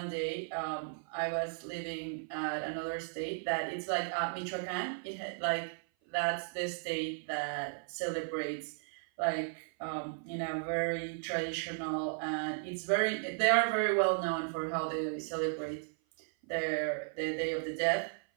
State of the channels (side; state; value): left; silent; 54 dB below the other